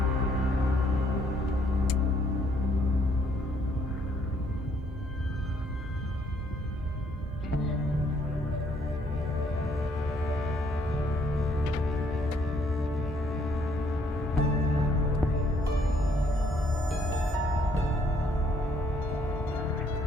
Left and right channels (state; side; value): normal; both; correlation 0.67